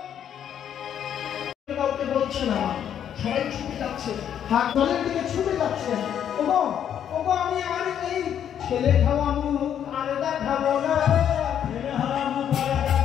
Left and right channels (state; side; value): quieter; right; 9.3 dB